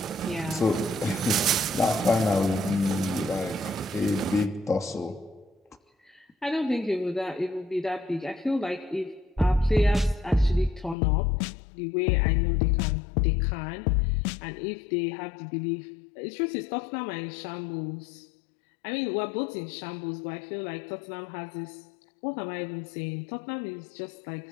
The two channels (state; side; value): drops out; right; at 11.0 s